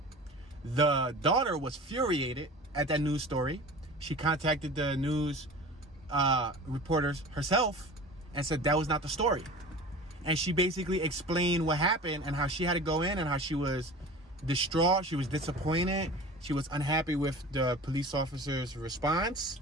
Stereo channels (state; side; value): normal; both; correlation 0.37